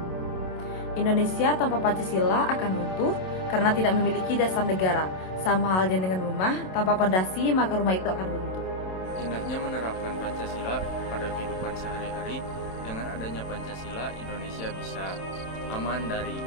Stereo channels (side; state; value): right; late; 27 ms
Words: Indonesia tanpa Pancasila akan runtuh karena tidak memiliki dasar negara. Sama halnya dengan rumah, tanpa pondasi maka rumah itu akan runtuh. Indahnya menerapkan Pancasila pada kehidupan sehari-hari. Dengan adanya Pancasila, Indonesia bisa aman dari